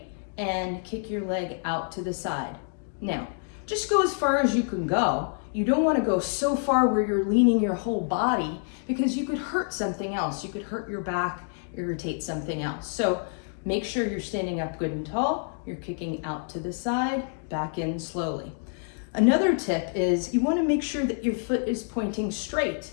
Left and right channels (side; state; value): right; silent; 60 dB below the other